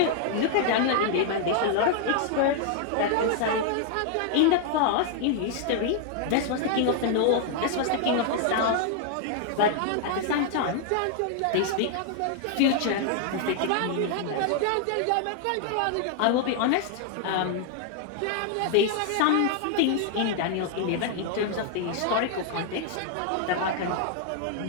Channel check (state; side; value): different; both; correlation 0.00